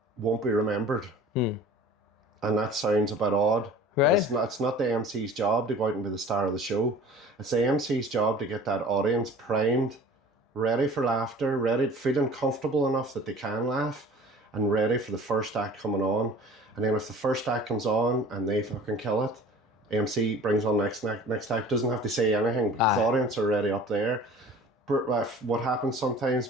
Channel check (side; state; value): both; normal; correlation 0.44